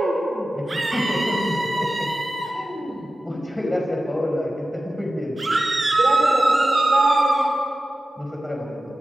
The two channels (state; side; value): normal; both; correlation 0.94